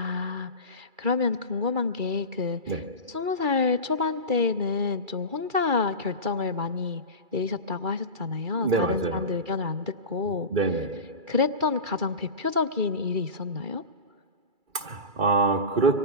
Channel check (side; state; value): left; late; 2.3 ms